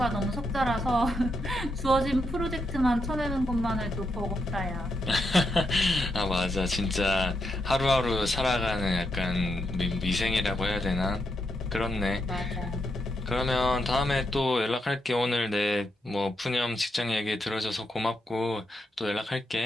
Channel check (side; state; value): both; normal; correlation 0.82